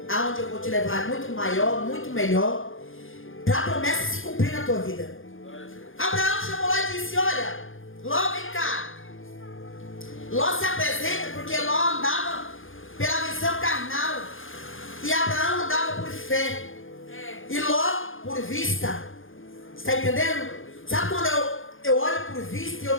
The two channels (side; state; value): right; late; 0.59 ms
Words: Aonde eu vou te levar é muito maior, muito melhor, para a promessa se cumprir na tua vida. Abraão chamou lá e disse, olha, Ló, vem cá. Ló se apresenta porque Ló andava pela visão carnal e Abraão andava por fé. E Ló por vista. Está entendendo? Sabe quando eu olho por vista e eu